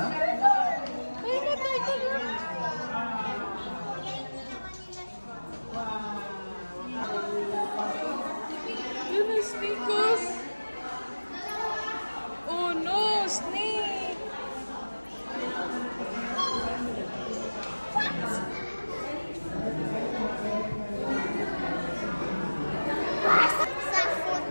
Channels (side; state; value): both; inverted; correlation -1.00